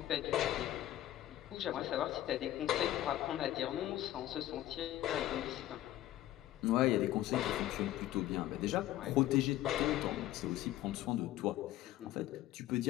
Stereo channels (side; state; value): right; quieter; 14.2 dB